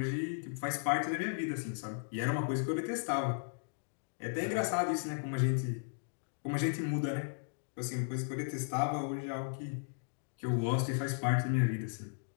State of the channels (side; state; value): right; silent; digital silence